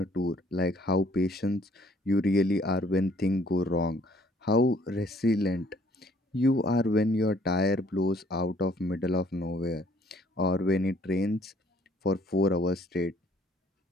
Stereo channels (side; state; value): both; normal; correlation 0.61